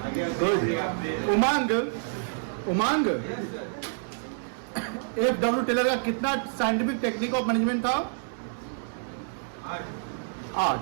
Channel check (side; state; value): left; silent; 59 dB below the other